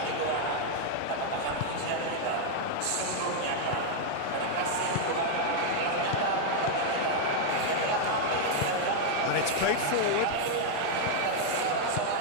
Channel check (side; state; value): both; different; correlation 0.00